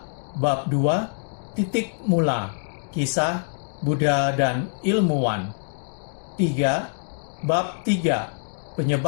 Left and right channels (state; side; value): silent; right; digital silence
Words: Bab 2, titik mula, kisah Buddha dan ilmuwan. 3. Bab 3,